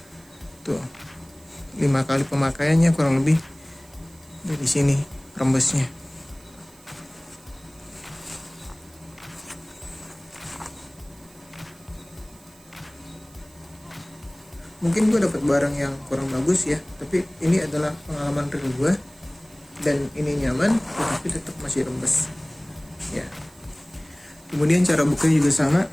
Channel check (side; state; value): right; noise; hiss, 26 dB below the sound